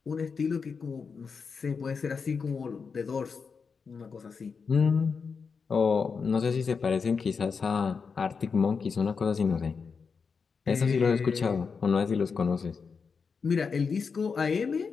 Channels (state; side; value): quieter; right; 5.5 dB